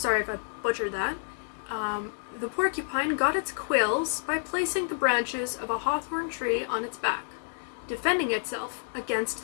if I butchered that, the porcupine got its quills by placing the branches of a hawthorn tree on its back, defending itself against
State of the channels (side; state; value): right; silent; digital silence